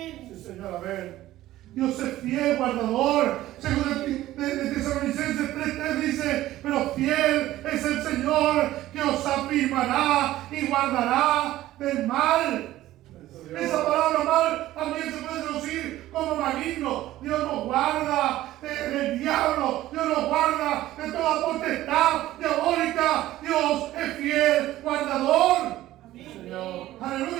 Dios es fiel, guardador. Según de Tesalonicenses 3:3 dice, pero fiel es el Señor que os afirmará y guardará del mal. Esa palabra mal también se puede traducir como maligno. Dios nos guarda del diablo. Dios nos guarda de toda potestad diabólica. Dios es fiel, guardador. Amén.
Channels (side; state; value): left; quieter; 15.0 dB